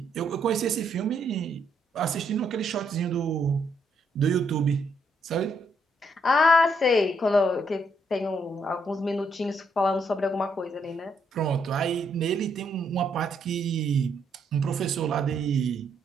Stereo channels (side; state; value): both; normal; correlation 0.74